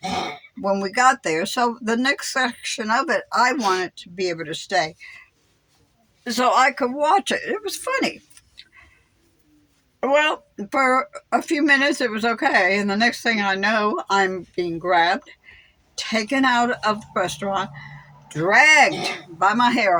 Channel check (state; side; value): identical; both; correlation 1.00